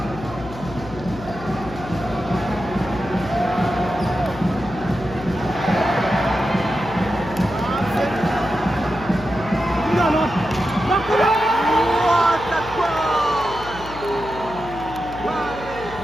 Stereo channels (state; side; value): noise; left; hum, 14 dB below the sound